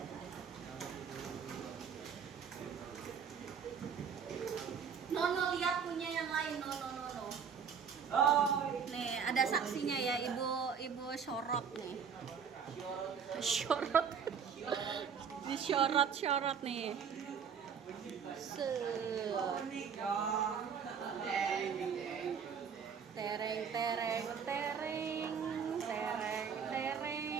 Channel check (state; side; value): quieter; left; 6.8 dB